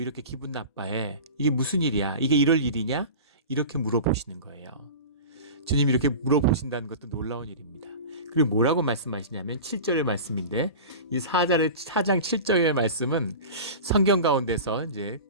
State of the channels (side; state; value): both; inverted; correlation -0.33